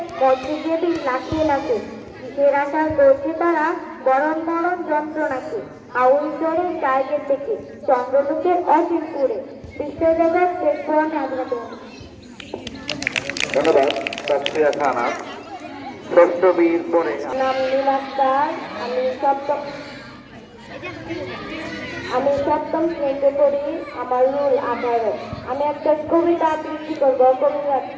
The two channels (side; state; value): both; identical; correlation 1.00